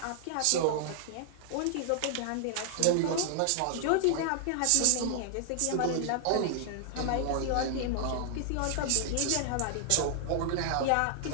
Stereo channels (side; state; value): both; different; correlation -0.01